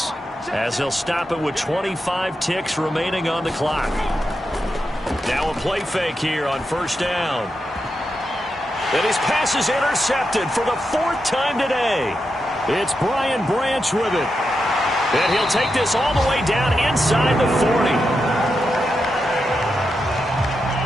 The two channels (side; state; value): both; normal; correlation 0.87